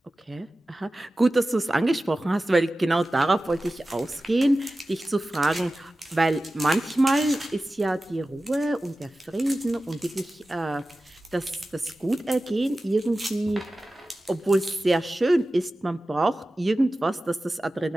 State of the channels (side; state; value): both; normal; correlation 0.95